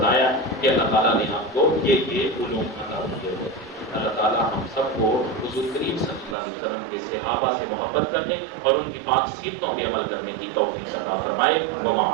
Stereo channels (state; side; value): drops out; left; at 6.4 s